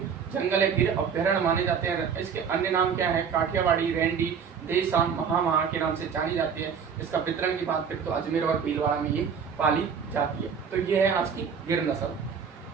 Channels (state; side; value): quieter; left; 6.7 dB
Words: जंगल है, गिर अभ्यारण्य माने जाते हैं। इसके अन्य नाम क्या है? काठियावाड़ी, रेंडी, देसान, महा के नाम से जानी जाती है। इसका वितरण की बात करें तो अजमेर और भीलवाड़ा में ये पाली जाती है। तो ये है आज की गिर नस्ल।